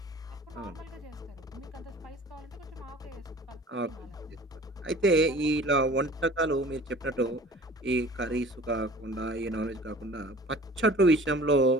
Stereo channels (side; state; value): both; normal; correlation 0.46